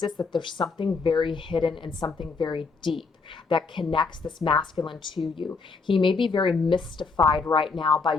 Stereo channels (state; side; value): quieter; right; 4.5 dB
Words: that there's something very hidden and something very deep. that connects this masculine to you. He may be very mystified right now by